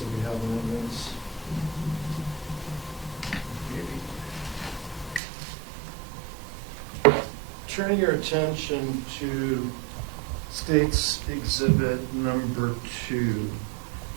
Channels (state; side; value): drops out; left; at 5.2 s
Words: that we have in this. Turning your attention to State's Exhibit number 2.